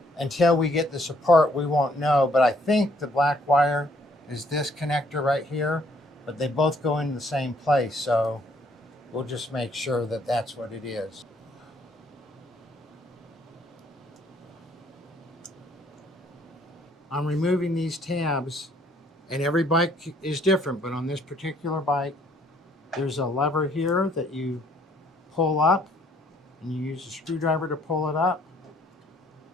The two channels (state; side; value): normal; both; correlation 0.65